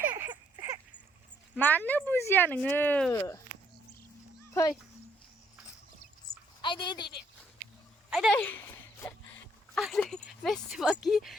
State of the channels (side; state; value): both; normal; correlation 0.70